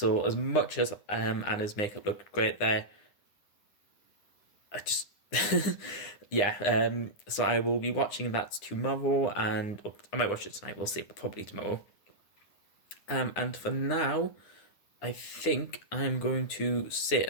as much as Anna's makeup looked great there, I just yeah. So I will be watching that tomorrow, and I might watch it tonight. We'll see, but probably tomorrow. And for now, I think I'm going to sit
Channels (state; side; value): late; right; 9.8 ms